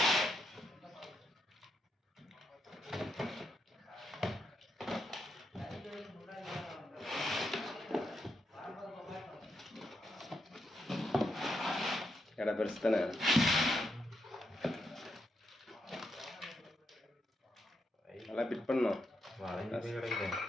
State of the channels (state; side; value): normal; both; correlation 0.81